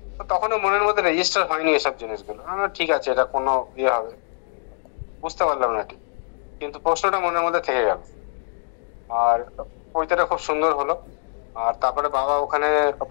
তো তখনও মনের মধ্যে রেজিস্টার হয়নি এসব জিনিসগুলো, ঠিক আছে এটা কোনো ইয়ে হবে, বুঝতে পারলাম না ঠিক, কিন্তু প্রশ্নটা মনের মধ্যে থেকে গেল। আর পৈতেটা খুব সুন্দর হলো। আর তারপরে বাবা ওখানে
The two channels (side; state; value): right; silent; digital silence